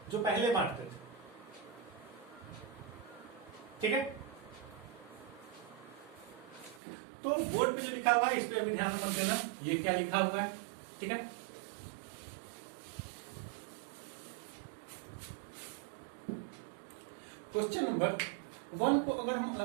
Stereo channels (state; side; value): drops out; left; at 6.8 s